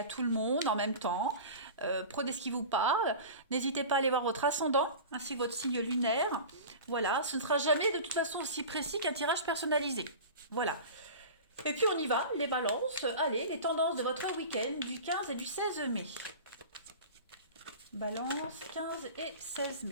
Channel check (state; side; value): inverted; both; correlation -0.34